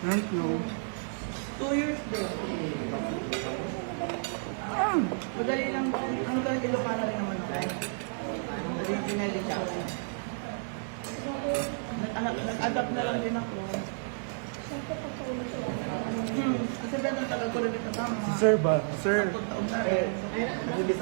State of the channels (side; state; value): left; silent; 57 dB below the other